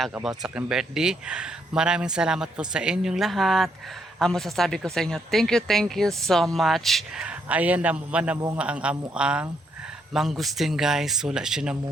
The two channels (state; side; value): normal; both; correlation 0.74